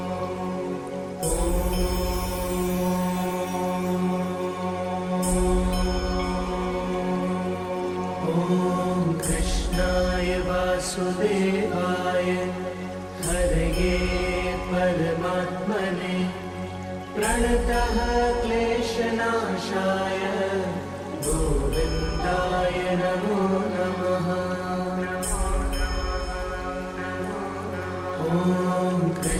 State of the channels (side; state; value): both; identical; correlation 1.00